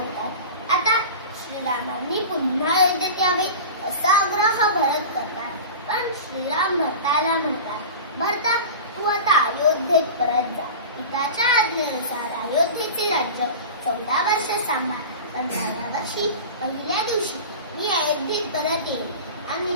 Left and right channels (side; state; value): both; inverted; correlation -0.32